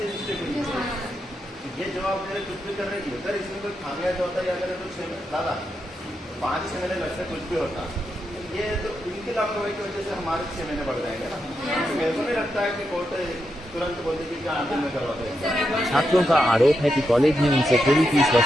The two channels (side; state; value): both; normal; correlation 0.84